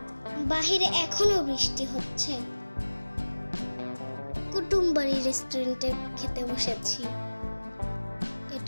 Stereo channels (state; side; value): inverted; both; correlation -1.00